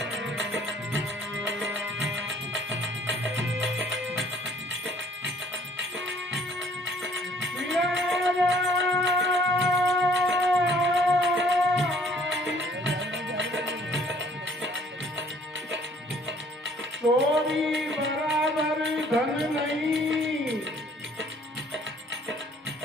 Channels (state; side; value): normal; both; correlation 0.58